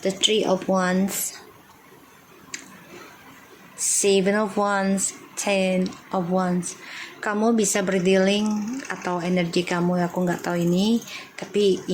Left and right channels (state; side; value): identical; both; correlation 1.00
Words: the Three of Wands, Seven of Wands, Ten of Wands. Kamu bisa berdealing atau energi kamu, aku nggak tahu ini, tapi